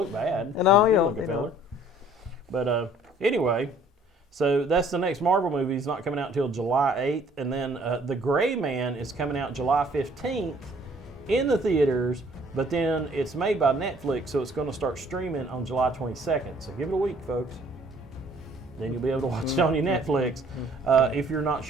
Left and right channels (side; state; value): both; normal; correlation 0.57